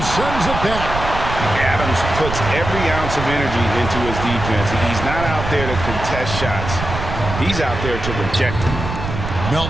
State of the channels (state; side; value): noise; right; rumble, 6 dB below the sound